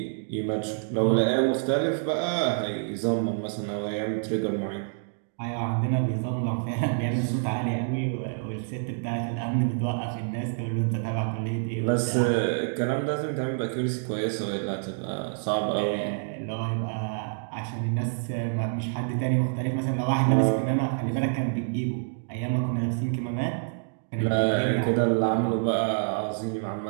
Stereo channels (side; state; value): left; silent; digital silence